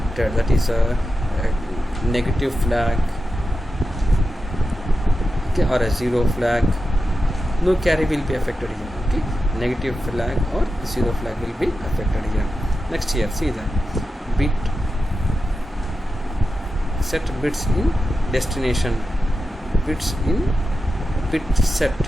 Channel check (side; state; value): both; normal; correlation 0.91